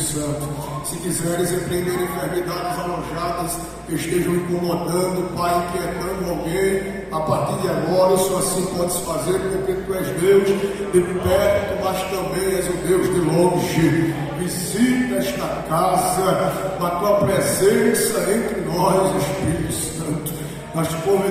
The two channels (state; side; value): identical; both; correlation 1.00